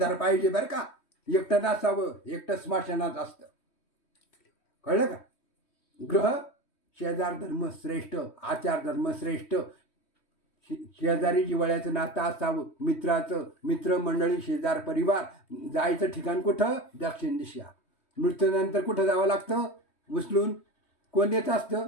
पाहिजे बरं का. एकटं नसावं. एकटं स्मशानात असतं. कळलं का? ग्रह शेजार धर्म श्रेष्ठ, आचार धर्म श्रेष्ठ. शेजारी जिव्हाळ्याचं नातं असावं. मित्राचं, मित्रमंडळी, शेजार, परिवार. जायचं ठिकाण कुठं? दक्षिण दिशा. मृत्यूनंतर कुठं जावं लागतं? उचलून कोण देत असतं?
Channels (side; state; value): right; late; 3.1 ms